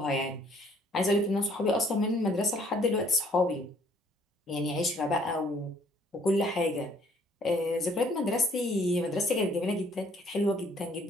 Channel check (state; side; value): normal; both; correlation 0.61